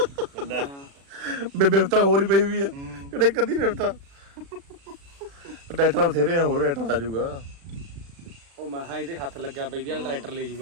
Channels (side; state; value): left; late; 36 ms